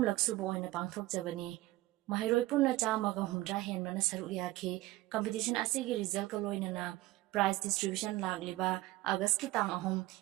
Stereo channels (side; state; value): left; quieter; 17.9 dB